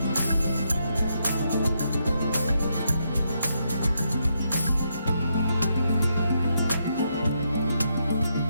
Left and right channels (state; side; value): inverted; both; correlation -0.79